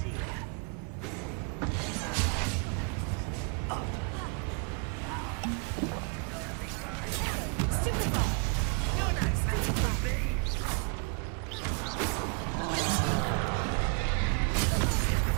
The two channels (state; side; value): quieter; left; 38.4 dB